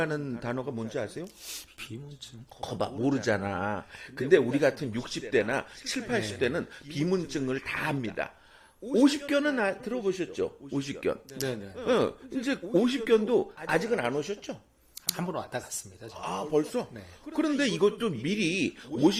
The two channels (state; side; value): identical; both; correlation 1.00